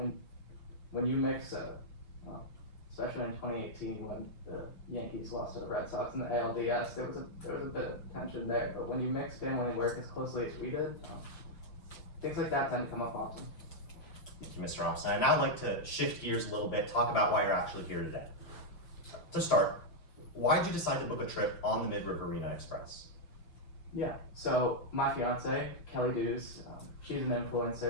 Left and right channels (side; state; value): right; late; 5.8 ms